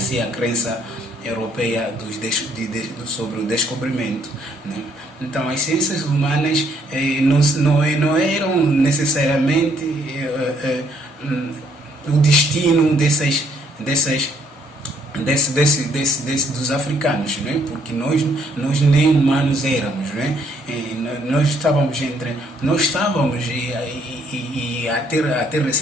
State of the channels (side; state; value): both; normal; correlation 0.68